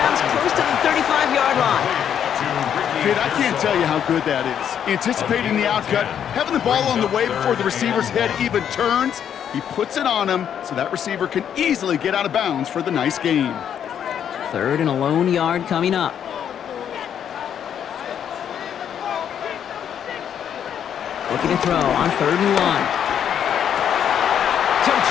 close to the 35-yard line. Kid, I can't tell you how good that is. Anticipating the outcut, having the ball on the way before the receiver's head even turns, he puts it on him so that receiver can easily get out of bounds for the nice gain. 3rd and a lone yard coming up. Looking to throw on 3rd and 1.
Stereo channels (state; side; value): quieter; right; 8.9 dB